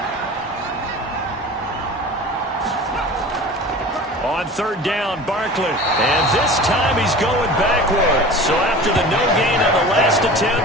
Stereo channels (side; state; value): both; normal; correlation 0.38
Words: On 3rd down, Barkley. And this time he's going backwards. So after the no gain on the last